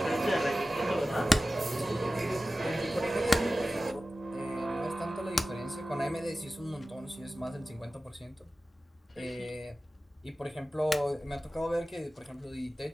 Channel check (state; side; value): normal; both; correlation 0.95